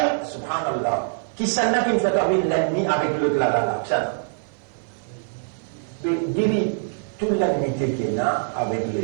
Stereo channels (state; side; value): silent; left; 56 dB below the other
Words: subhanallah, qui s'en a qui me fait avec l'ennemi avec l'autre là, ça. Divise toute l'ennemité qu'il y a avec